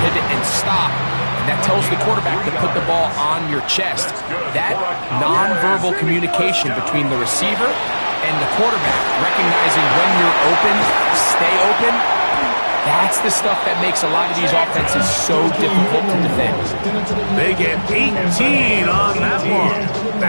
pivot and stop. That tells the quarterback to put the ball on your chest. That nonverbal communication between the receiver and the quarterback, recognizing when you're open, stay open, that's the stuff that makes a lot of these offenses so difficult to defend. They get 18 on that one.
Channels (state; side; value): inverted; both; correlation -1.00